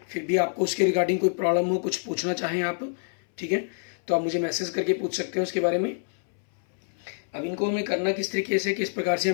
फिर भी आपको उसके रिगार्डिंग कोई प्रॉब्लम हो, कुछ पूछना चाहें आप, ठीक है, तो आप मुझे मैसेज करके पूछ सकते हैं उसके बारे में। अब इनको हमें करना किस तरीके से, किस प्रकार से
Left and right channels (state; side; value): silent; right; 60 dB below the other